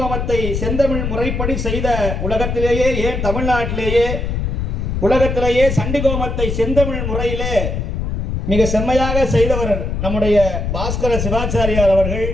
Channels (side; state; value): left; noise; rumble, 2 dB below the sound